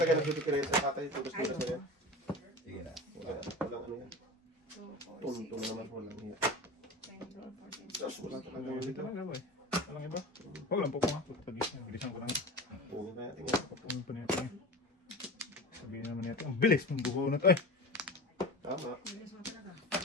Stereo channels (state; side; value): normal; both; correlation 0.31